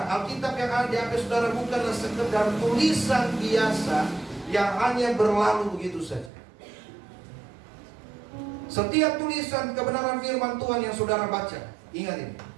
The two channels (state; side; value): drops out; left; at 6.3 s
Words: Alkitab yang ada di hati saudara bukanlah sekedar tulisan biasa yang hanya berlalu begitu saja. Setiap tulisan kebenaran firman Tuhan yang saudara baca, ingat ini.